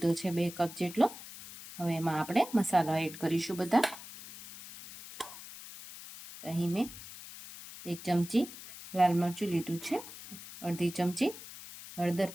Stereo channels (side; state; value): left; noise; hiss, 14 dB below the sound